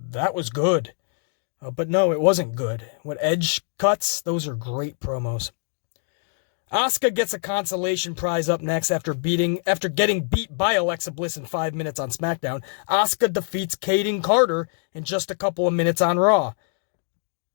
was good. But no, it wasn't good. What Edge cuts, those are great promos. Asuka gets a consolation prize up next after getting beat by Alexa Bliss in 5 minutes on SmackDown. Asuka defeats Kaden Carter in just a couple of minutes on Raw.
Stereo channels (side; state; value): right; silent; 57 dB below the other